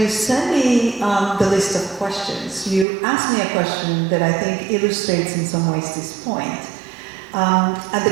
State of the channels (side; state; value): left; drops out; at 2.9 s